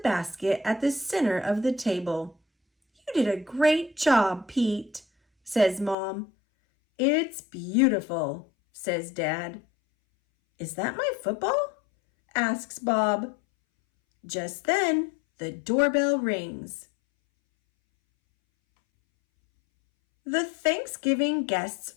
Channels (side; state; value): right; drops out; at 6.0 s